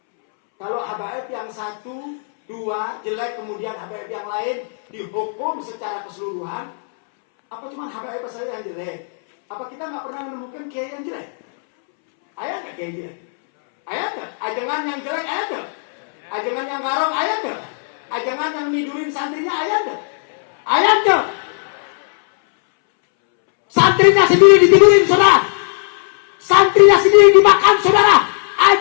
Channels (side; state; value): right; silent; 68 dB below the other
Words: Kalau habaib yang 1-2 jelek, kemudian habaib yang lain dihukum secara keseluruhan, apa cuma habaib saja yang jelek? Apa kita nggak pernah menemukan kiai yang jelek? Ada nggak kiai jelek? Ada nggak? Ajengan yang jelek ada nggak? Ajengan yang garong ada nggak? Ajengan yang nidurin santrinya ada nggak? Ada nggak? Santrinya sendiri ditidurin saudara, santrinya sendiri dimakan saudara.